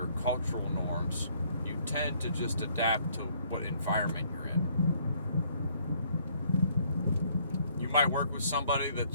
cultural norms. You tend to just adapt to what environment you're in. You might work with somebody that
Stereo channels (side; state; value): both; inverted; correlation -0.64